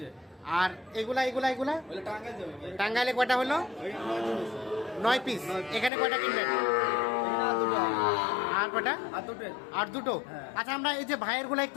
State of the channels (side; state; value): right; drops out; at 5.9 s